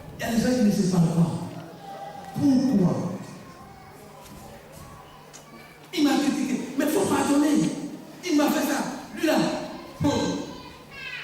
Il y a des gens qui ne se parlent pas. Pourquoi? Il m'a critiqué. Mais il faut pardonner. Il m'a fait ça. Lui là.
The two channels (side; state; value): both; identical; correlation 1.00